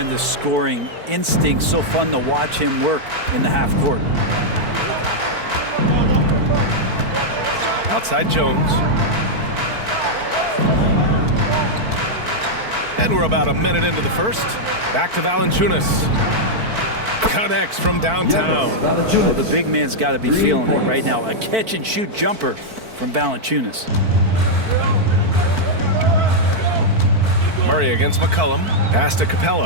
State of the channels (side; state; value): left; late; 4.5 ms